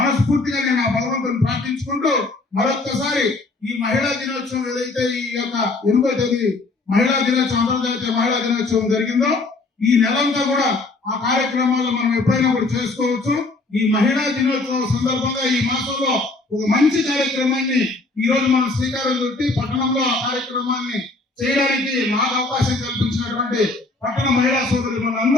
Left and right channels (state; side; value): quieter; right; 3.3 dB